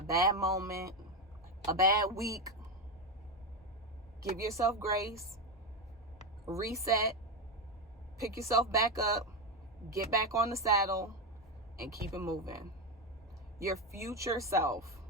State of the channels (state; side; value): normal; both; correlation 0.11